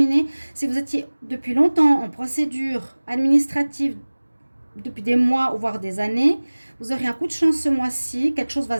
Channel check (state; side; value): inverted; both; correlation -1.00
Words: Si vous étiez depuis longtemps en procédure administrative, depuis des mois ou voire des années, vous aurez un coup de chance ce mois-ci. Quelque chose va